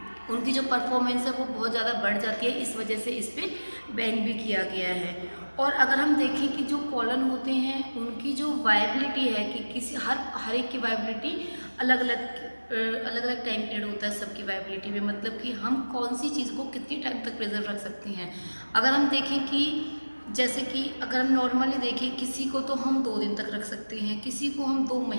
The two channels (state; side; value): inverted; both; correlation -1.00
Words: उनकी जो परफॉर्मेंस है वो बहुत ज़्यादा बढ़ जाती है। इस वजह से इस पे बैन भी किया गया है। और अगर हम देखें कि जो पोलन होते हैं उनकी जो वायबिलिटी है कि किसी हर एक की वायबिलिटी अलग अलग टाइम पीरियड होता है सबकी वायबिलिटी में, मतलब कि हम कौन सी चीज़ को कितनी टाइम तक प्रिजर्व रख सकते हैं। अगर हम देखें कि जैसे कि अगर हम नॉर्मली देखें, किसी को तो हम 2 दिन तक रख सकते हैं, किसी को हम 2